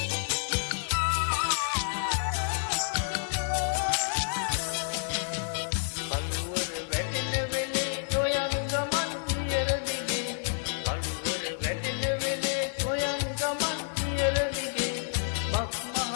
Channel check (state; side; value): silent; right; digital silence